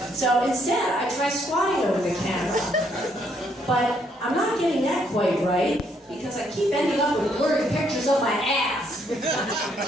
So instead, I try squatting over the camera. But I'm not getting that quite right because I keep ending up with blurry pictures of my ass.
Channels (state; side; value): normal; both; correlation 0.71